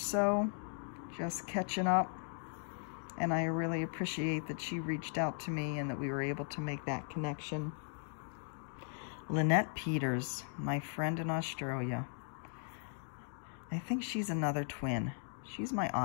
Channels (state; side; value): silent; right; 53 dB below the other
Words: just catching up. And I really appreciate that she reached out to me and that we were able to make that connection. Lynette Peters, my friend in Australia. I think she's another twin. She's my